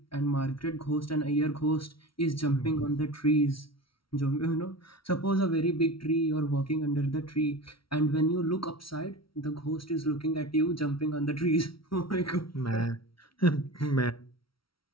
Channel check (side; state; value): right; late; 0.75 ms